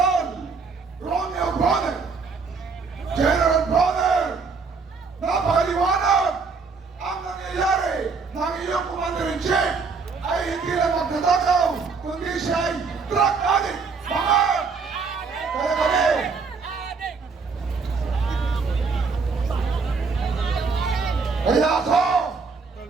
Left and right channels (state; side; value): quieter; left; 4.8 dB